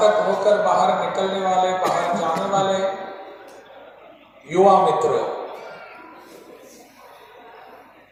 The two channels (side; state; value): both; identical; correlation 1.00